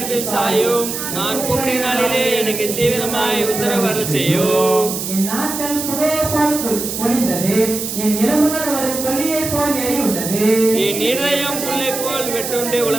சாயும். நான் கூப்பிடும் நாளிலே எனக்கு தீவிரமாய் உத்தரவு செய்யும். என் நாட்கள் புகையை போல் ஒளிந்தது, என் எலும்புகள் ஒரு கொல்லியை போல் எரியுண்டது. என் இருதயம் புல்லை போல் வெட்டுண்டு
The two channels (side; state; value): right; noise; hiss, 5 dB below the sound